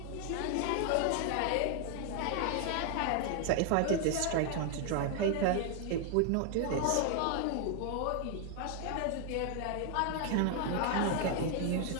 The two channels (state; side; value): different; both; correlation 0.00